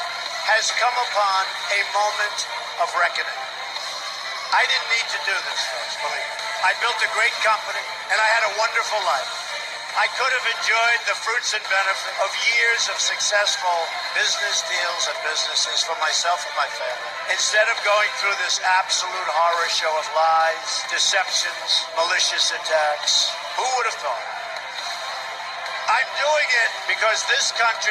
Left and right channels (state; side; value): identical; both; correlation 1.00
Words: has come upon a moment of reckoning. I didn't need to do this, folks, believe me. I built a great company, and I had a wonderful life. I could have enjoyed the fruits and benefit of years of successful business deals and businesses for myself and my family. Instead of going through this absolute horror show of lies, deceptions, malicious attacks, who would have thought? I'm doing it because this